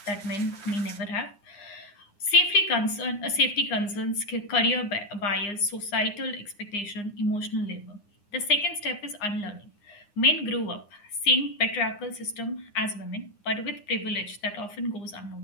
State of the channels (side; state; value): right; late; 9.7 ms